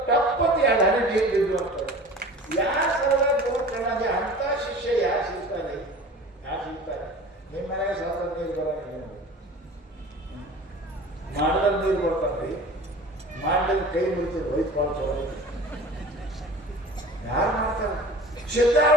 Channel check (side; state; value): both; normal; correlation 0.40